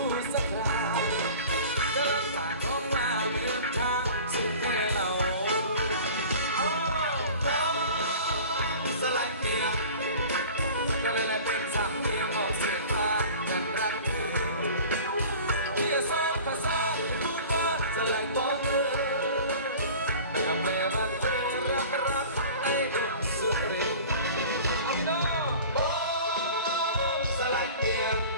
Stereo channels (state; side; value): inverted; both; correlation -0.41